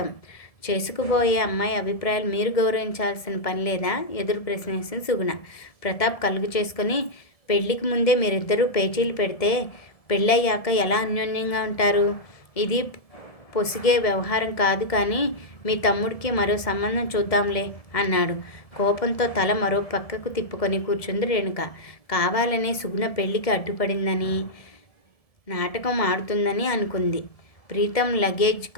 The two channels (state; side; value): late; right; 1.7 ms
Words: చేసుకుపోయే అమ్మాయి అభిప్రాయాలు మీరు గౌరవించాల్సిన పని లేదా? ఎదురు ప్రశ్నించింది సుగుణ. ప్రతాప్ కలుగు చేసుకుని పెళ్లికి ముందే మీరిద్దరూ పేచీలు పెడితే పెళ్ళయ్యాక ఎలా అన్యోన్యంగా ఉంటారు? ఇది పొసిగే వ్యవహారం కాదు కానీ మీ తమ్ముడికి మరో సంబంధం చూద్దాంలే అన్నాడు. కోపంతో తల మరో పక్కకు తిప్పుకొని కూర్చుంది రేణుక. కావాలనే సుగుణ పెళ్లికి అడ్డుపడిందని, నాటకం ఆడుతుందని అనుకుంది. ప్రీతం లగేజ్